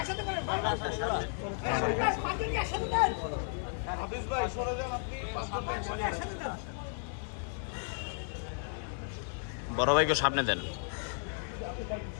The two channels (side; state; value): right; silent; 55 dB below the other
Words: হাফিজ ভাই, সরে যান আপনি। বড় ভাইকে সামনে দেন,